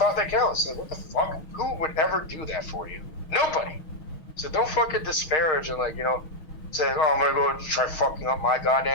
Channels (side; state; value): right; late; 6.4 ms